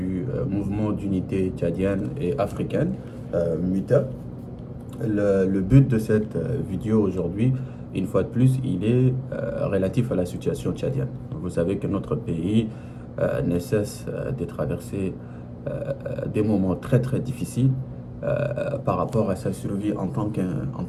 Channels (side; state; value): both; identical; correlation 1.00